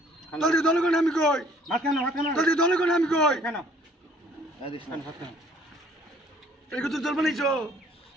ভাত কেন দলে কোন আমি কই কেন এই তো জল বানাইছো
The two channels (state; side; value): normal; both; correlation 0.58